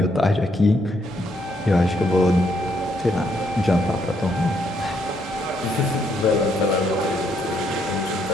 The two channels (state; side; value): normal; both; correlation 0.73